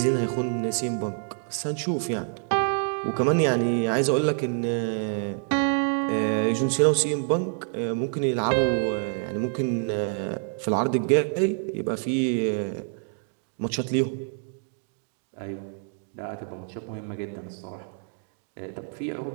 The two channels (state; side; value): silent; left; 60 dB below the other